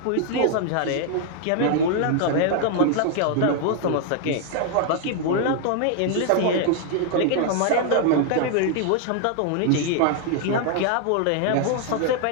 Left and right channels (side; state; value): both; different; correlation 0.00